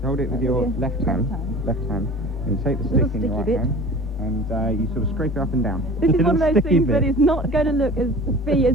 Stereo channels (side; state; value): both; normal; correlation 0.40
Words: Hold it with your left hand, and you take the stick in your right hand, and you sort of scrape it up and down. This is one of those things that is not going to look as